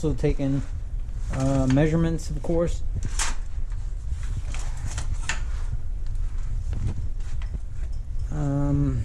taken measurements, of course.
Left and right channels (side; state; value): both; identical; correlation 1.00